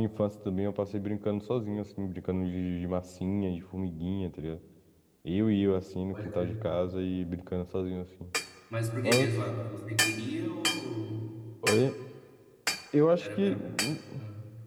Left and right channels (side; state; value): both; identical; correlation 1.00